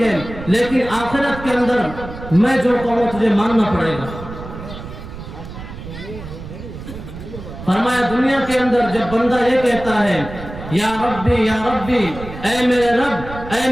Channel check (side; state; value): right; noise; rumble, 12 dB below the sound